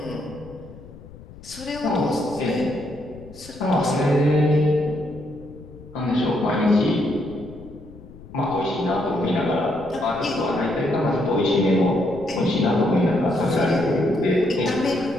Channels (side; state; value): left; noise; rumble, 18 dB below the sound